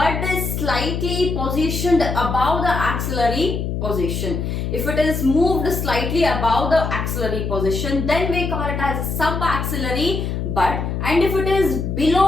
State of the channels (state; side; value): noise; left; hum, 2 dB below the sound